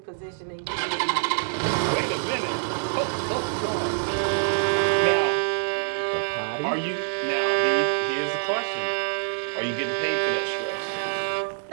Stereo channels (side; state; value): left; silent; digital silence